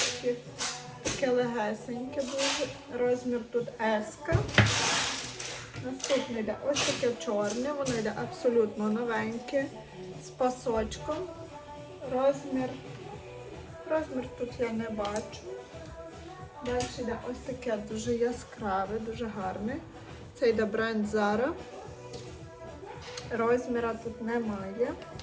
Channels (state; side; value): identical; both; correlation 1.00